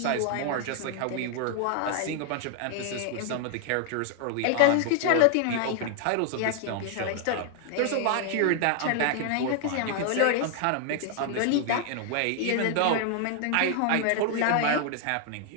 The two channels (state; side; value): different; both; correlation 0.00